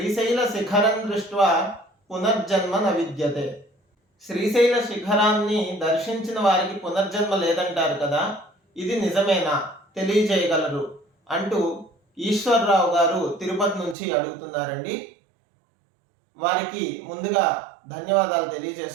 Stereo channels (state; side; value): drops out; left; at 14.0 s